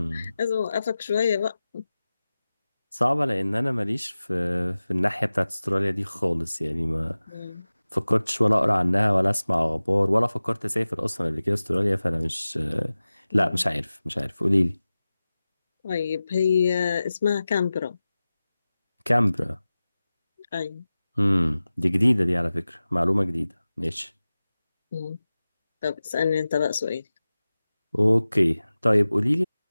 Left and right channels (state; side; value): inverted; both; correlation -0.96